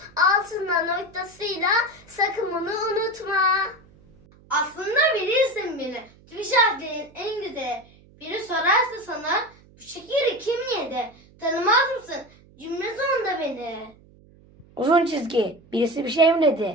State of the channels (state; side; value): noise; right; hum, 27 dB below the sound